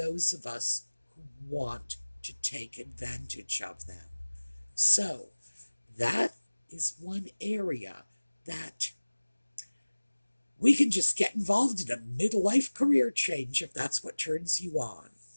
of us who want to take advantage of them. So that is one area that we can just get involved in a midlife career change if that's what turns you on.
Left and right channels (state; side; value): inverted; both; correlation -1.00